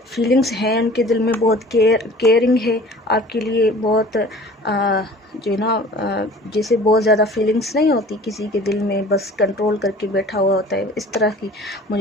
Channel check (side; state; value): both; normal; correlation 0.45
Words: फीलिंग्स हैं उनके दिल में, बहुत केयरिंग है आपके लिए, बहुत जो है ना जैसे बहुत ज़्यादा फीलिंग्स नहीं होती किसी के दिल में, बस कंट्रोल करके बैठा हुआ होता है, इस तरह की